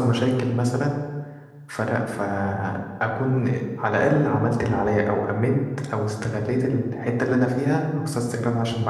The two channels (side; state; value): both; identical; correlation 1.00